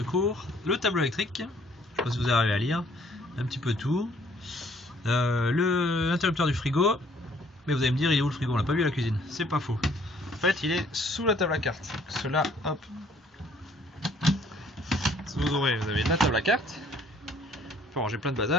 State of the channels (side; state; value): both; normal; correlation 0.60